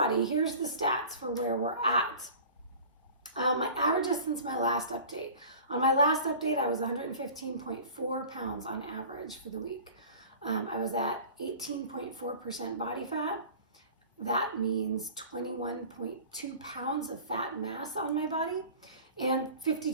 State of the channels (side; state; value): both; inverted; correlation -0.41